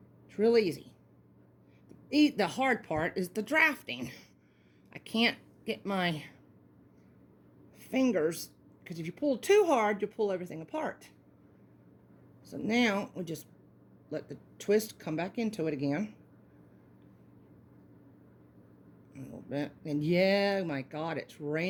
It's real easy. The hard part is the drafting. I can't get my fingers, because if you pull too hard, you'll pull everything apart. So now, we just let the twist come back into it again. A little bit. And yeah, my God, it's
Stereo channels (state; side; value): identical; both; correlation 1.00